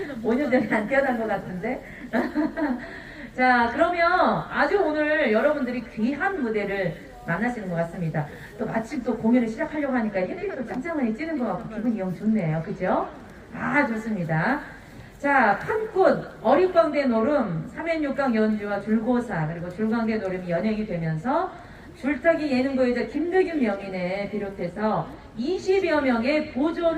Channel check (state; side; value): identical; both; correlation 1.00